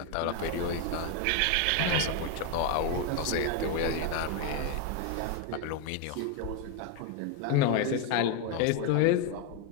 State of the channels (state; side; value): different; both; correlation 0.02